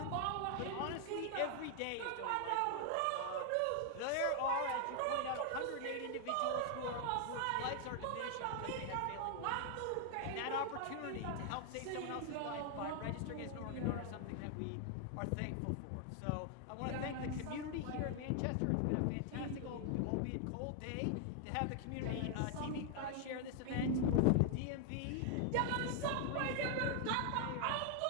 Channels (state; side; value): different; both; correlation 0.00